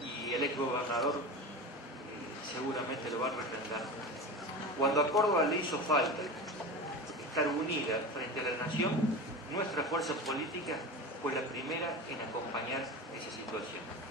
y el exgobernador seguramente lo va a refrendar, cuando a Córdoba le hizo falta estar unida frente a la nación, nuestra fuerza política fue la primera en acompañar esa situación.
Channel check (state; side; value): normal; both; correlation 0.27